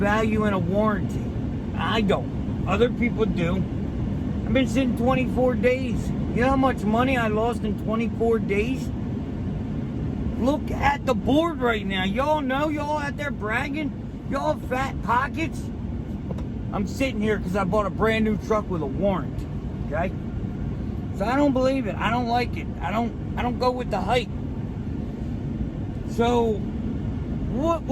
in a warranty. I don't. Other people do. I've been sitting 24 days. You know how much money I lost in 24 days? Look at the board right now. Y'all know, y'all out there bragging. Y'all have fat pockets. I'm sitting here because I bought a brand new truck with a warranty. Okay? So I don't believe it. I don't like it. I don't go with the hype. So what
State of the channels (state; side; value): identical; both; correlation 1.00